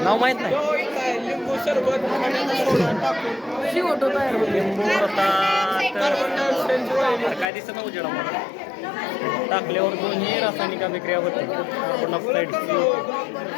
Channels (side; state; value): right; drops out; at 7.5 s